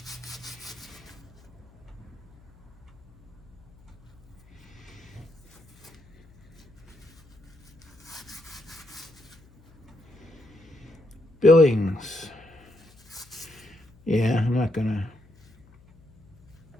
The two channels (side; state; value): left; noise; hum, 27 dB below the sound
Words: Billings. Yeah, I'm not gonna